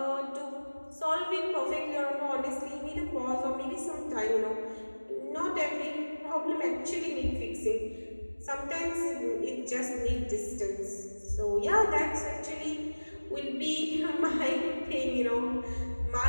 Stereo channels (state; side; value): inverted; both; correlation -1.00